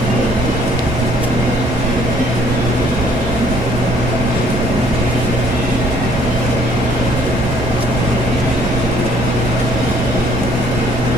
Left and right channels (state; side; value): normal; both; correlation 0.61